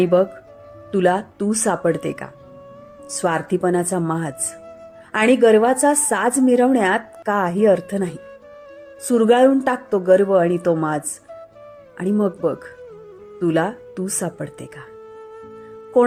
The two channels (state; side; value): identical; both; correlation 1.00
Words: बघ तुला तू सापडते का. स्वार्थीपणाचा माज आणि गर्वाचा साज मिरवण्यात काही अर्थ नाही. सुरगाळून टाक तो गर्व आणि तो माज आणि मग बघ तुला तू सापडते का.